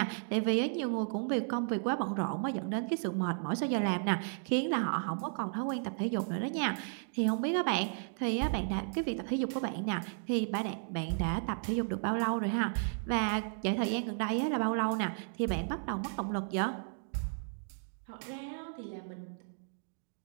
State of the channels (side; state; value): left; silent; digital silence